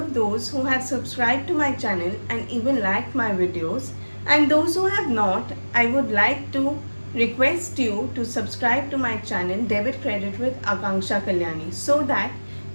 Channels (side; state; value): both; inverted; correlation -1.00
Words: those who have subscribed to my channel and even liked my videos, and those who have not, I would like to request you to subscribe to my channel Debit Credit with Akanksha Kalyani so that